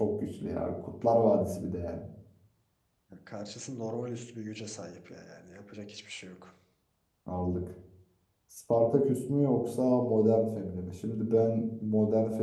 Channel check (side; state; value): both; identical; correlation 1.00